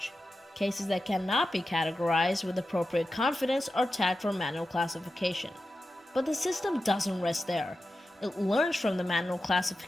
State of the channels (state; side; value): normal; both; correlation 0.92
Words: Cases that cannot be categorized with appropriate confidence are tagged for manual classification. But the system doesn't rest there. It learns from the manual